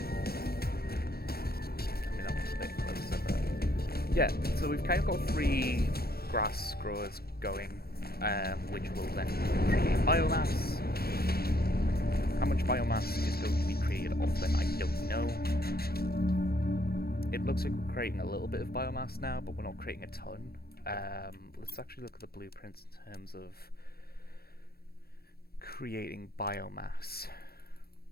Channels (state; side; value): late; right; 0.45 ms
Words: Yeah, so we've kind of got 3 grass growers going, which will then create biomass. How much biomass is going to be created off them, I don't know. It looks like we're creating a little bit of biomass now, but we're not creating a ton. Let's actually look at the blueprints in terms of creating biomass.